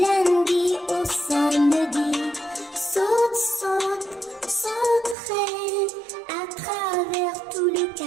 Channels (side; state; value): left; drops out; at 5.2 s